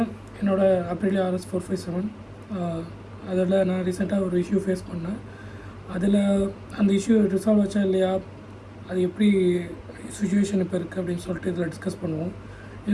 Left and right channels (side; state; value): both; identical; correlation 1.00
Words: என்னோடய அப்ரிலியா RS457 அதில் நான் ரீசெண்டாக ஒரு இஷ்யூ ஃபேஸ் பண்ணேன். அதில் அந்த இஷ்யூ ரிசால்வ் ஆச்சா இல்லையா, அது எப்படி சுச்சுவேஷன் இப்போ இருக்குது அப்படின்னு சொல்லிட்டு இதில் டிஸ்கஸ் பண்ணுவோம்.